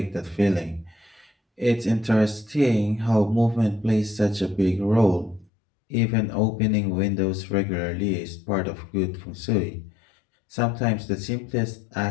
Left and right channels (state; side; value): drops out; right; at 5.5 s